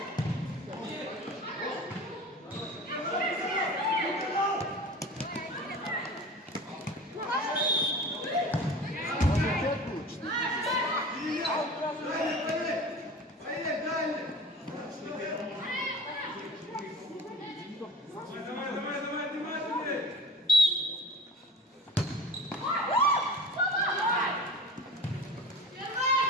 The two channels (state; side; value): normal; both; correlation 0.38